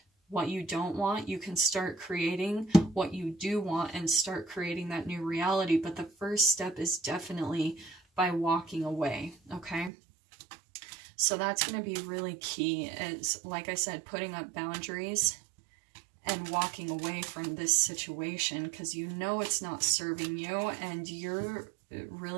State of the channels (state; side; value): drops out; left; at 9.9 s